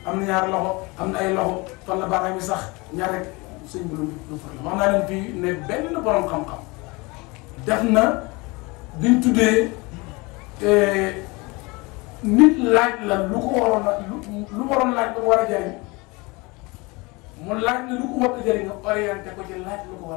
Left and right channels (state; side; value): quieter; right; 25.6 dB